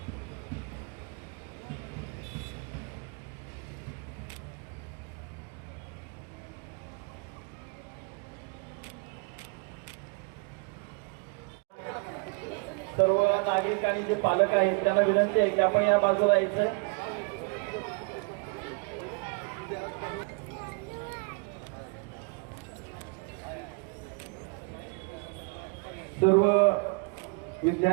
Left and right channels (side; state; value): left; quieter; 32.8 dB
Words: सर्व नागरिक आणि जे पालक आहेत त्यांना विनंती आहे की आपण या बाजूला यायचंय. सर्व